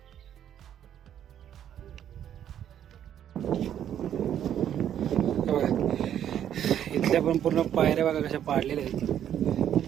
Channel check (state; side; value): quieter; left; 10.1 dB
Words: इथल्या पण पूर्ण पायऱ्या बघा कशा पाडलेल्या